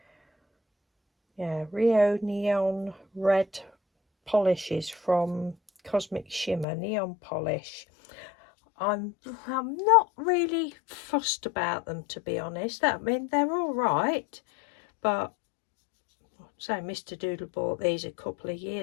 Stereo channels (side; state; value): right; drops out; at 6.7 s